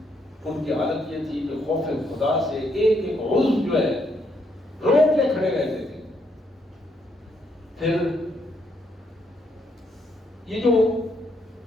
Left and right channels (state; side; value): normal; both; correlation 0.74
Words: ان کی حالت یہ تھی کہ خوف خدا سے ایک ایک عضو جو ہے روک کے کھڑے رہتے تھے۔ پھر یہ جو